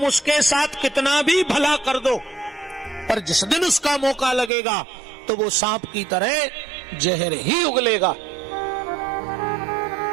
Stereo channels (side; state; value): left; drops out; at 4.5 s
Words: उसके साथ कितना भी भला कर दो, पर जिस दिन उसका मौका लगेगा तो वो सांप की तरह जहर ही उगलेगा।